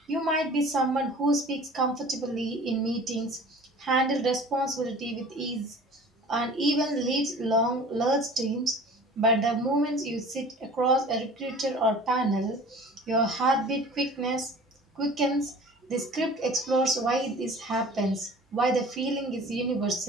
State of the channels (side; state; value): both; normal; correlation 0.43